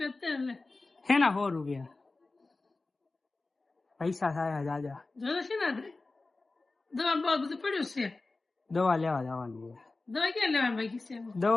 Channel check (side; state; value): right; quieter; 3.4 dB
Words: તેલ હેના 100 રૂપિયા પૈસા થાય દાદા. જોયો છે ને દવા બહુ બધું પડ્યું છે. દવા લેવા જવાની છે. દવા ક્યાં લેવાની બાકી છે?